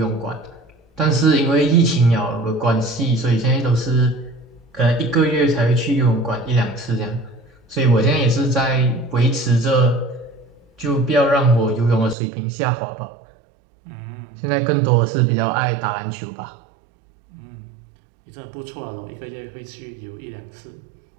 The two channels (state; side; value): drops out; left; at 12.2 s